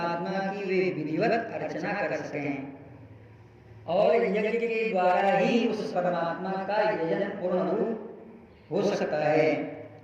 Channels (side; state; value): both; identical; correlation 1.00